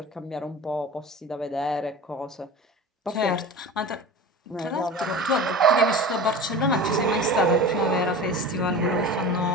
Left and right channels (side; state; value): both; normal; correlation 0.34